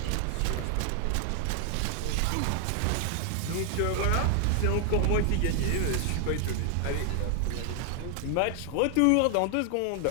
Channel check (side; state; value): both; different; correlation 0.00